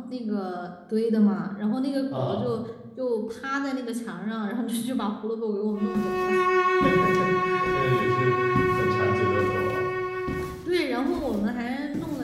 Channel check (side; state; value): both; identical; correlation 1.00